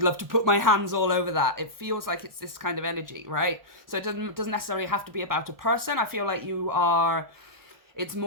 love to put my hands all over that. It feels like it's this kind of energy, right? So it doesn't necessarily have to be about a person. I feel like it's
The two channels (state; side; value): late; left; 1.3 ms